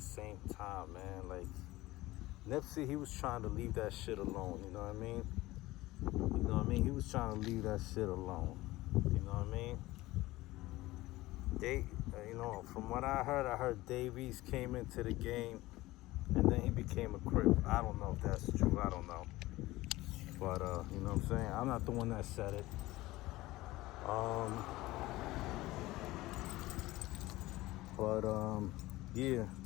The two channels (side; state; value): right; quieter; 18.4 dB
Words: time, man. Like Nipsey, he was trying to leave that shit alone. You know what I mean? You know what I mean? He was trying to leave that shit alone. You know what I mean? You know, from what I heard Davies came into the game and then he became a Crip. I don't know if that's true. I don't know. But, you know what I'm saying? I'm not the one that said it. Yeah.